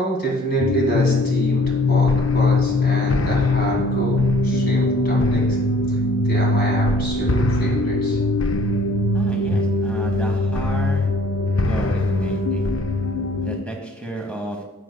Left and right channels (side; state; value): both; normal; correlation 0.56